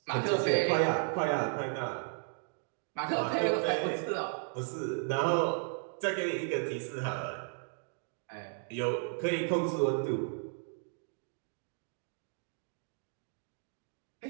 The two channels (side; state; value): left; silent; 55 dB below the other